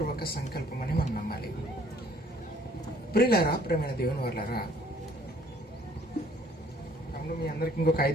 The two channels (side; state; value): both; normal; correlation 0.59